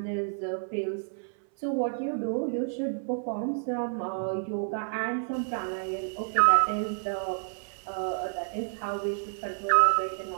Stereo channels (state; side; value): silent; left; 58 dB below the other